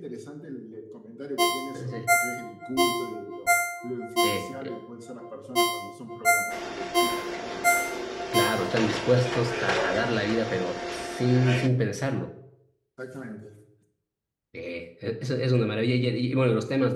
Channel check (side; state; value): both; identical; correlation 1.00